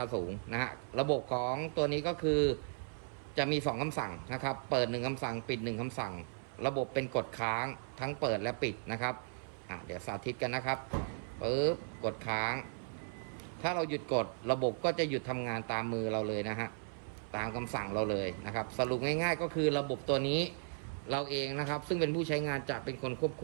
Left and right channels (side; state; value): left; silent; 54 dB below the other